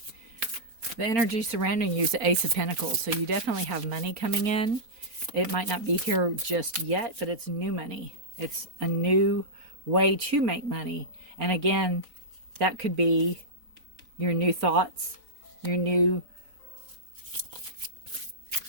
The energy surrounding you is the Ace of Pentacles, so you definitely have money coming in. It might not be here just yet, but it's new money. It's a new way to make money. And again, that could be your new thoughts, your new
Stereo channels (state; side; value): late; left; 3.9 ms